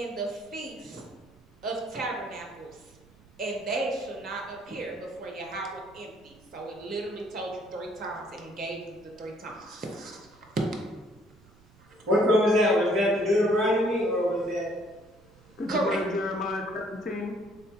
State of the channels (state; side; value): noise; right; rumble, 27 dB below the sound